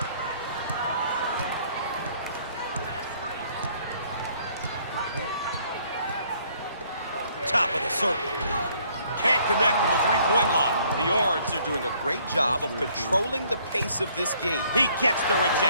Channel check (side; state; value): both; inverted; correlation -0.63